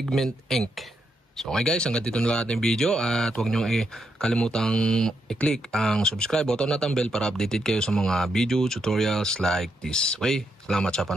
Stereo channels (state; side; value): normal; both; correlation 0.80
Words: ink. So, okay guys, hanggang dito na lang ating video at huwag nyo kalimutang i-click ang subscribe button at ang bell para updated kayo sa mga video tutorials like this. Okay, salamat sa